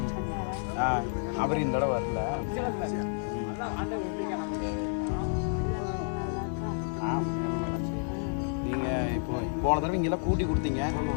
அவர் இந்த தடவை வரல. நீங்க இப்போ போன தடவை இங்கெல்லாம் கூட்டி கொடுத்தீங்க.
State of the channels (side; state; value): right; silent; 58 dB below the other